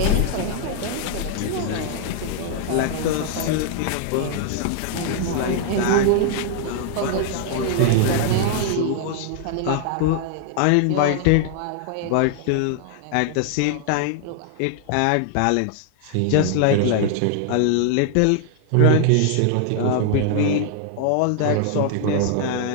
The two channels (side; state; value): both; different; correlation 0.00